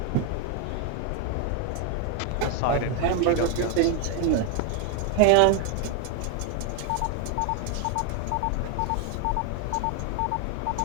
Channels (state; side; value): different; both; correlation 0.01